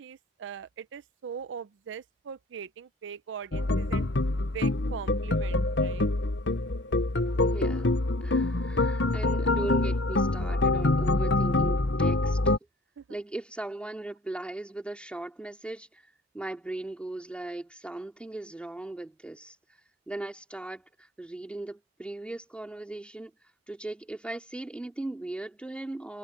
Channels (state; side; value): normal; both; correlation 0.50